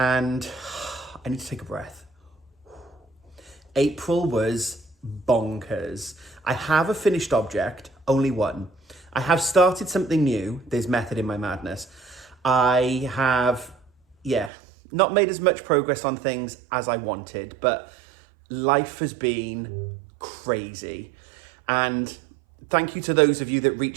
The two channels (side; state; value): left; drops out; at 14.5 s